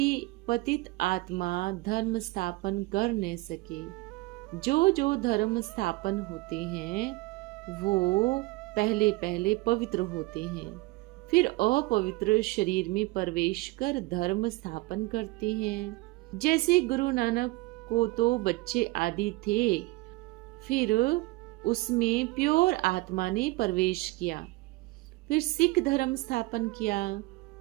पतित आत्मा धर्म स्थापन कर न सके। जो धर्म स्थापन होते हैं वो पहले पहले पवित्र होते हैं, फिर अपवित्र शरीर में प्रवेश कर धर्म स्थापन करते हैं। जैसे गुरु नानक को तो बच्चे आदि थे, फिर उसमें प्योर आत्मा ने प्रवेश किया, फिर सिख धर्म स्थापन किया।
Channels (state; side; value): quieter; left; 21.8 dB